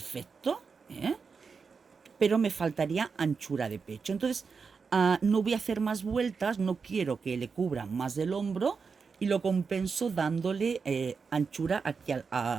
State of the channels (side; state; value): left; quieter; 5.3 dB